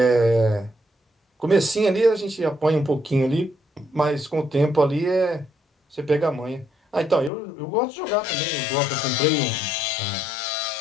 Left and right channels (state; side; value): drops out; right; at 7.3 s